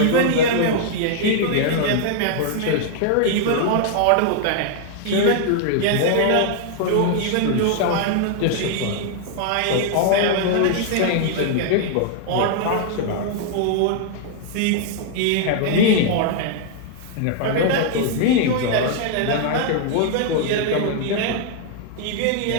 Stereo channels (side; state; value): both; different; correlation 0.00